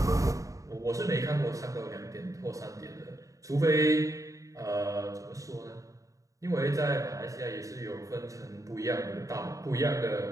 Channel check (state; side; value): late; left; 0.16 ms